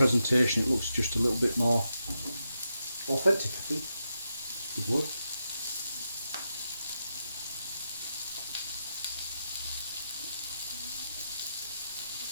It looks just a little bit more authentic, I think. Good word.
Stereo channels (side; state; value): both; inverted; correlation -0.86